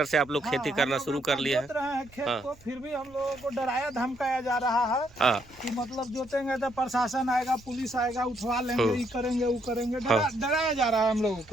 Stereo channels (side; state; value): right; noise; rumble, 25 dB below the sound